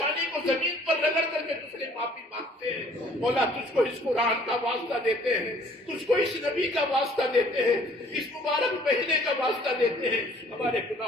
کو زمین پر رگڑ کر کے تجھ سے معافی مانگتے ہیں، مولا تجھ کو اس قرآن کا واسطہ دیتے ہیں، تجھ کو اس نبی کا واسطہ دیتے ہیں، اس مبارک مہینے کا واسطہ دیتے ہیں، ہمارے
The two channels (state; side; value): normal; both; correlation 0.57